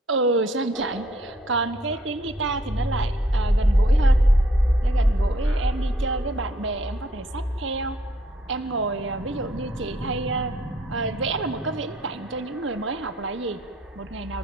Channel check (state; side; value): normal; both; correlation 0.66